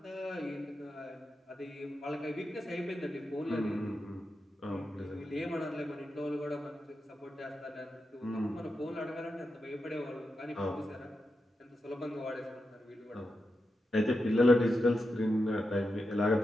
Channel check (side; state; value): both; normal; correlation 0.88